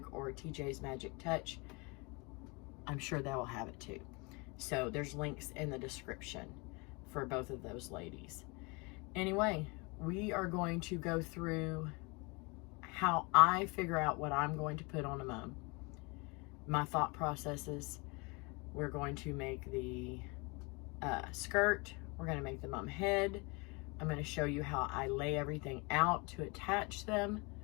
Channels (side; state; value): right; quieter; 28.7 dB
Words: or TJ's Magic Touch. I'm sure they will have it too. So there's links in the description for both of those ladies. Anyway, we are going to go through how I figure out what I'm going to put on a mum, my thought processes. We're going to make the skirt. We're going to make the mum head. I'm going to show you how I lay everything out to attach them,